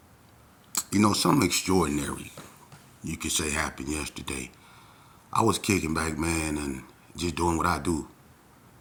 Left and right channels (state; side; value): identical; both; correlation 1.00